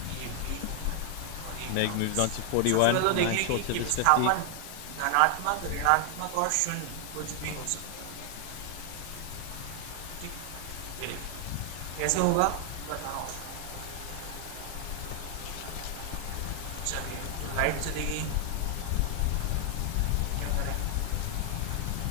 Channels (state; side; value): different; both; correlation 0.00